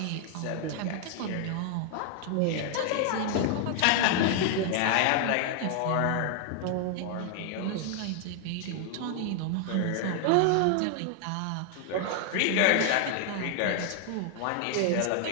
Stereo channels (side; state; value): both; different; correlation 0.00